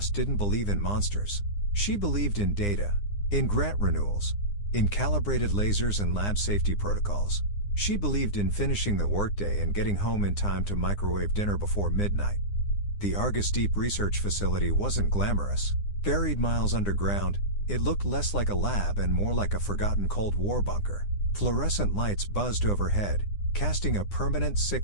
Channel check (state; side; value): late; right; 9.8 ms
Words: didn't believe in monsters. She believed in data, in grant renewals, in calibrated lasers and lab safety protocols. She believed in finishing the workday and getting home in time to microwave dinner before midnight. The Argus Deep Research Facility wasn't glamorous. Buried miles underground, it looked less like a lab and more like a forgotten Cold War bunker. Fluorescent lights buzzed overhead, casting a permanent